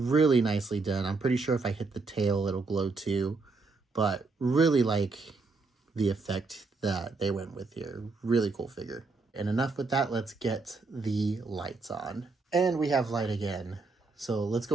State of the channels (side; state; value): left; quieter; 3.9 dB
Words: nicely done. I'm pretty sure if I hit the tail, it'll glow too. But really like the effect that they went with here. Really cool figure. And enough with that, let's get the lights on. And we have light again. So let's